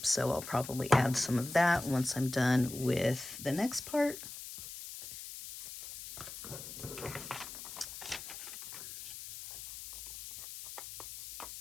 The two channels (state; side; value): noise; left; hiss, 11 dB below the sound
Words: so I'll probably add some of that once I'm done with the next part.